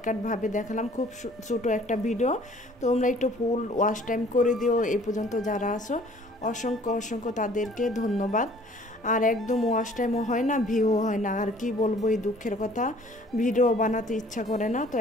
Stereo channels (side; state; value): both; normal; correlation 0.54